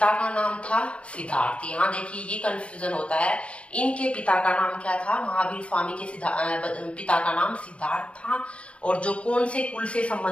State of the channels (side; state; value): right; late; 0.061 ms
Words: का नाम था सिद्धार्थ। यहाँ देखिए ये कंफ्यूजन होता है, इनके पिता का नाम क्या था? महावीर स्वामी के पिता का नाम सिद्धार्थ था। और जो कौन से कुल से